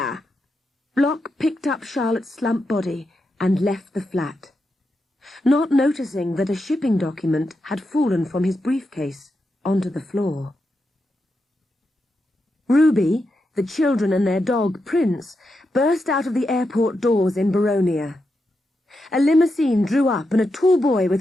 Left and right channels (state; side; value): normal; both; correlation 0.86